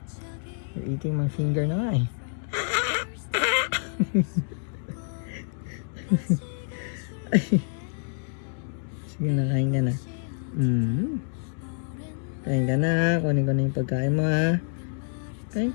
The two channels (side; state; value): right; silent; digital silence